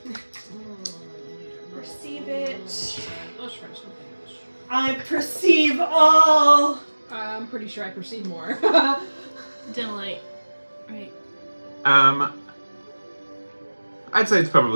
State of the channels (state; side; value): inverted; both; correlation -1.00